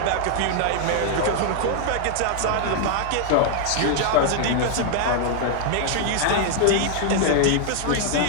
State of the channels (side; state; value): both; different; correlation 0.00